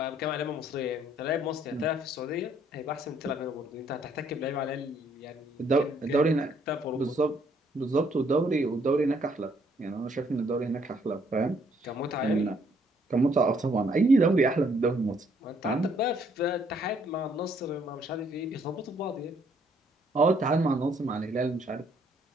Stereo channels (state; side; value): normal; both; correlation 0.67